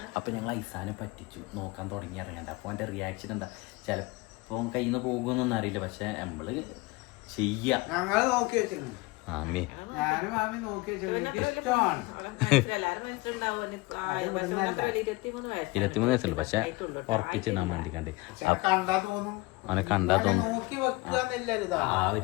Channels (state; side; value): quieter; right; 23.6 dB